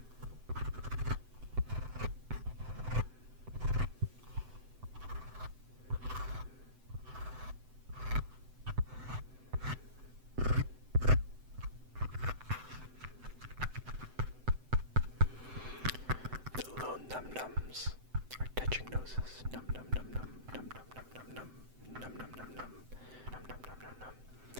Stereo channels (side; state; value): left; late; 7.8 ms